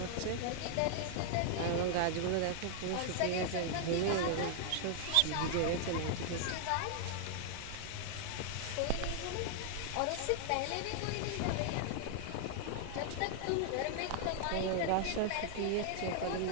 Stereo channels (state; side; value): different; both; correlation 0.00